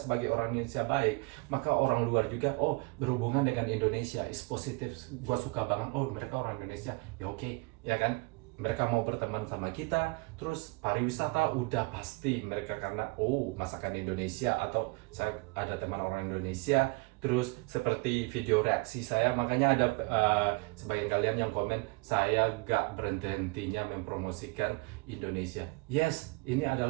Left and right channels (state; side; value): quieter; left; 27.1 dB